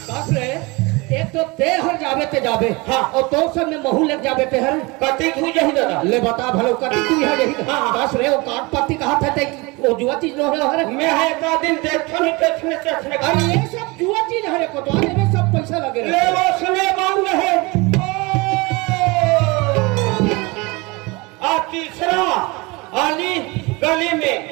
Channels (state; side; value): quieter; left; 25.4 dB